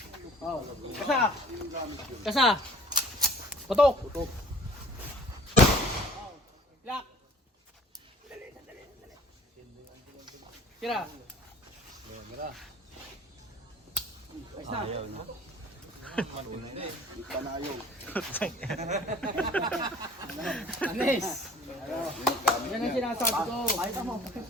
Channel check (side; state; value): both; normal; correlation 0.50